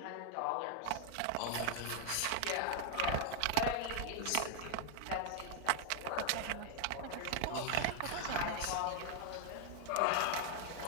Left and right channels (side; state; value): both; different; correlation 0.00